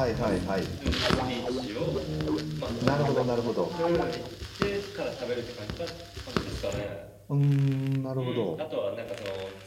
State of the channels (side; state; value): both; identical; correlation 1.00